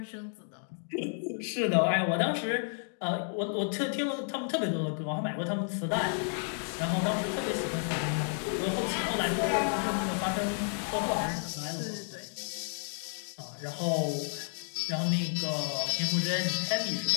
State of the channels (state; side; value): silent; right; 57 dB below the other